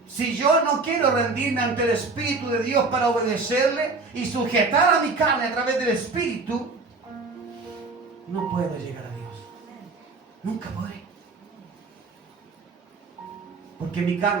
si yo no quiero rendirme ante el Espíritu de Dios para obedecerle y sujetar a mi carne a través del Espíritu, no puedo llegar a Dios. Nunca podré. Porque mi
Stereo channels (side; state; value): left; quieter; 3.9 dB